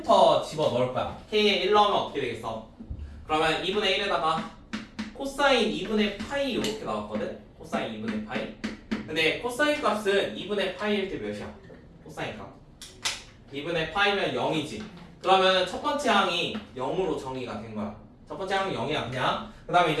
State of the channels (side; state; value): both; identical; correlation 1.00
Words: 집어 넣을 거야. K에 1 넣으면 어떻게 되겠어? 그러면 2분의 1에다가 코사인 2분의 파이 이렇게 나왔거든? 코사인 2분의 파이. 근데 코사인 값은 2분의 파이일 때 몇이야? 코사인 값 2분의 파이면 0이지. 그러면 첫 번째 항이 0으로 정의가 된 거야. 첫 번째 항이 0이야 그냥. 그 다음에